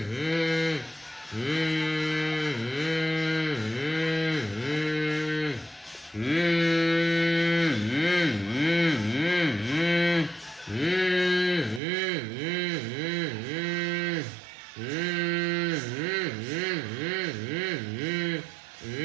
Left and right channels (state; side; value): drops out; left; at 11.8 s